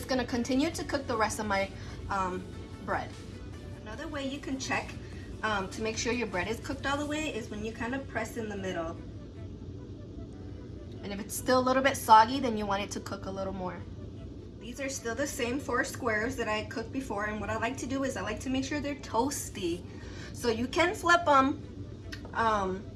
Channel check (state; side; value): identical; both; correlation 1.00